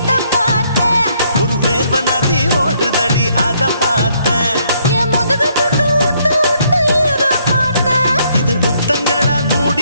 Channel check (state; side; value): inverted; both; correlation -0.70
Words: பார்த்தேன் ஒரு வேர்வ நதி ஓடுதடி அத பார்த்தேன் என் முதுகு புட்டு ஊத்து ஊத்து எதை பார்த்தேன் இதழ் முத்தங்களால்